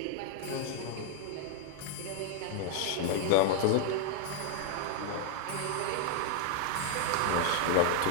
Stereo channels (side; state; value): both; different; correlation 0.00